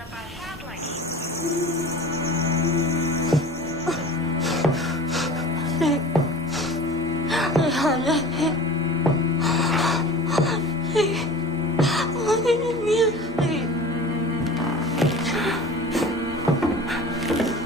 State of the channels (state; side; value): normal; both; correlation 0.38